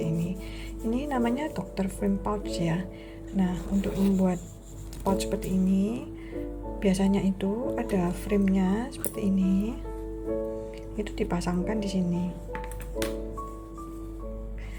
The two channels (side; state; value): both; identical; correlation 1.00